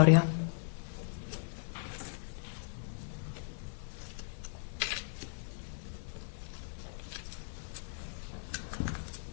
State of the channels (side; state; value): right; silent; digital silence